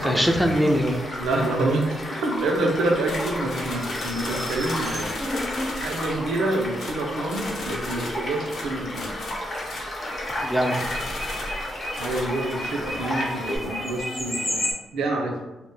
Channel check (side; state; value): both; normal; correlation 0.79